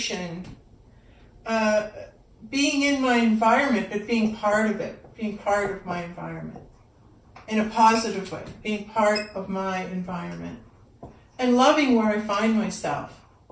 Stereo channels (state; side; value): identical; both; correlation 1.00